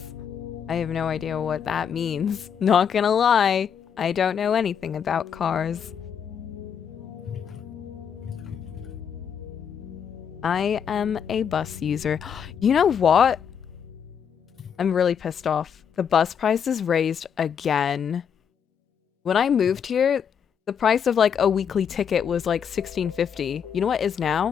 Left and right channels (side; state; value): right; quieter; 7.7 dB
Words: I have no idea what that means. Not gonna lie, I don't know anything about cars. I am a bus user. You know what? I'm really pissed off. The bus prices raised again. When I moved here, the price of like a weekly ticket was like $16.50. You know what is